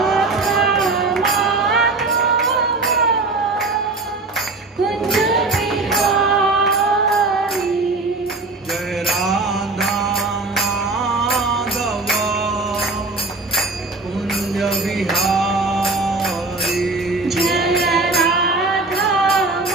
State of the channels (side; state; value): left; quieter; 3.5 dB